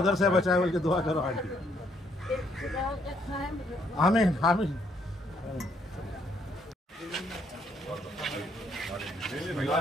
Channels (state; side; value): normal; both; correlation 0.70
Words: से बचाए बोल के दुआ करो आंटी। आमीन आमीन।